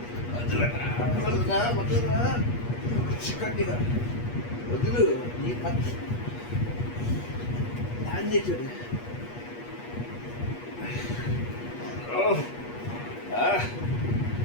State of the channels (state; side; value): late; right; 8.4 ms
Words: వదులురా చిక్కటిగా వదులు. నీ పచ్చి దాన్ని చూడు.